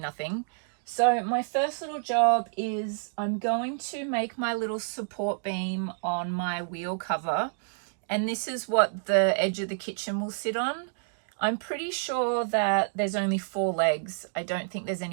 So my first little job is I'm going to make my little support beam on my wheel cover, and this is what the edge of the kitchen will sit on. I'm pretty sure that there's only 4 legs. I don't think there's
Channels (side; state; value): left; silent; digital silence